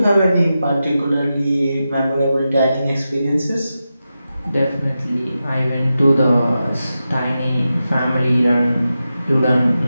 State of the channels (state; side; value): inverted; both; correlation -0.91